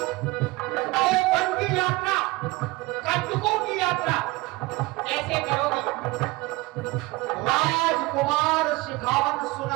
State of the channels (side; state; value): left; quieter; 21.8 dB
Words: तो वन की यात्रा, कंटकों की यात्रा कैसे करोगी? राजकुमार शिखावन